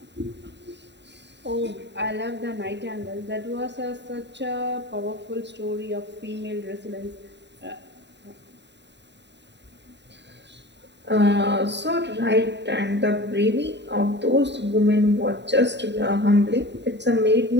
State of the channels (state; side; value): late; left; 0.51 ms